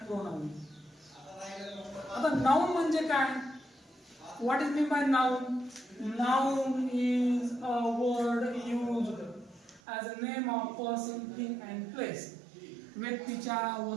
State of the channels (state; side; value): drops out; left; at 9.8 s